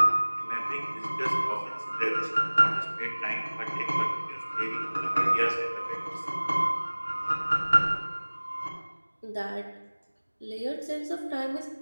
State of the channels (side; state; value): both; inverted; correlation -1.00